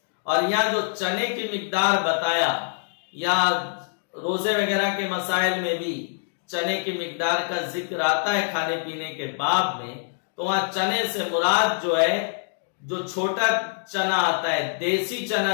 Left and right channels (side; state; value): right; silent; digital silence